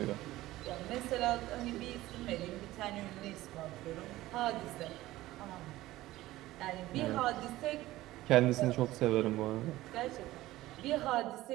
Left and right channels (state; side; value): quieter; left; 16.7 dB